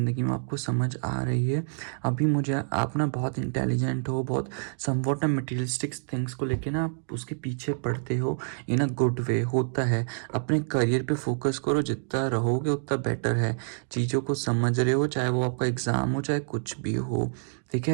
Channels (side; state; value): left; silent; digital silence